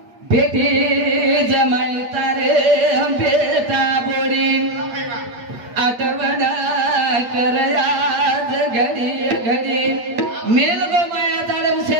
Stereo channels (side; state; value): left; late; 8.4 ms